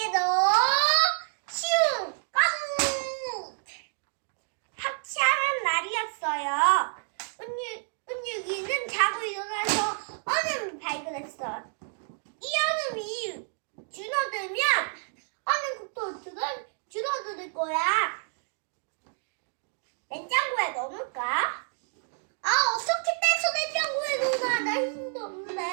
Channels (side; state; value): left; silent; 57 dB below the other